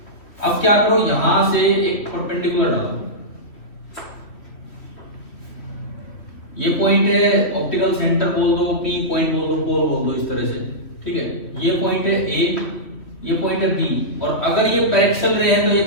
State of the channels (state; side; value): late; right; 3.1 ms